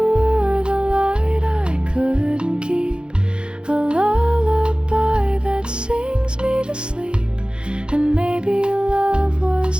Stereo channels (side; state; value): left; late; 0.051 ms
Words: the light I couldn't keep, a lullaby that sings me to sleep. And maybe love